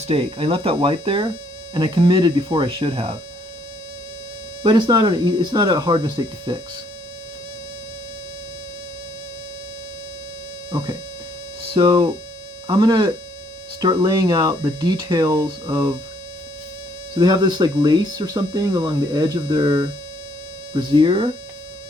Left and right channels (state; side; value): normal; both; correlation 0.67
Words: I left that white there, and I committed before I should have. But it's not a hard mistake to fix. Okay, so I'm gonna start laying out the details of, so they have this like lace or something along the edge of their brassiere.